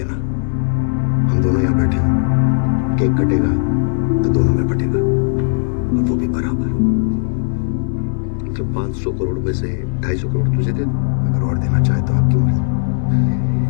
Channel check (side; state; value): right; silent; 68 dB below the other